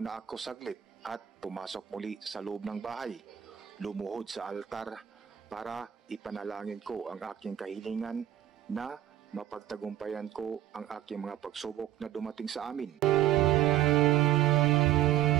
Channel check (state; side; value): quieter; left; 12.1 dB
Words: ako saglit at pumasok muli sa loob ng bahay. Lumuhod sa altar para ipanalangin ko ang aking kahilingan na mapagtagumpayan ko ang aking mga pagsubok na dumating sa amin.